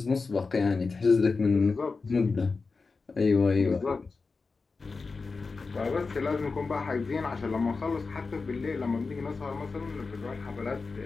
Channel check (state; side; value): quieter; right; 4.3 dB